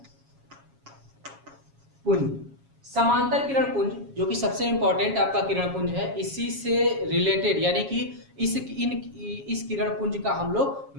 पुंज जो कि सबसे इंपॉर्टेंट आपका किरण पुंज है, इसी से रिलेटेड यानी कि इस किरण पुंज का हम लोग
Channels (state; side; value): late; left; 7.3 ms